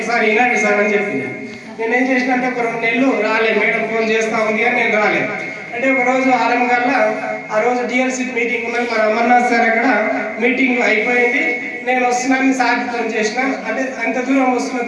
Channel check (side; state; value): both; identical; correlation 1.00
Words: వినండి సార్ అని చెప్పింది. నేనేం చేసినంటే ఒక 2 నెలలు రాలేదు. మేడం ఫోన్ చేస్తా ఉంది కానీ నేను రాలేదు. అంటే ఒక రోజు 6 గంటల ఆ రోజు డిఎల్సీ మీటింగ్ ఉన్నది. మన అమర్నాథ్ సార్ అక్కడ మీటింగ్ అయిపోయింది. నేను వస్తున్నాను సార్ ఫోన్ చేసిన, అంటే అంత దూరం వస్తున్నా